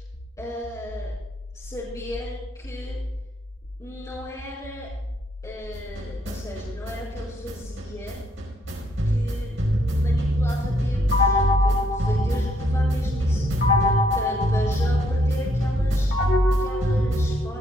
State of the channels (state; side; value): normal; both; correlation 0.71